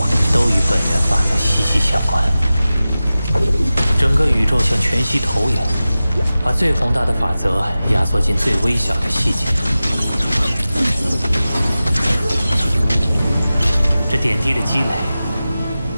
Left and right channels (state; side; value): inverted; both; correlation -0.95